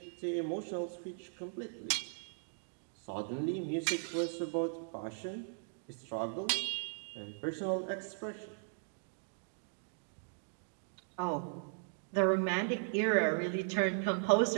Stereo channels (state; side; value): silent; left; digital silence